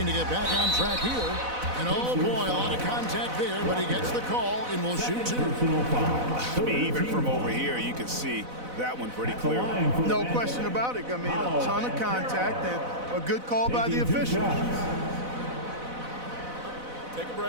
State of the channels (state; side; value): late; left; 4.0 ms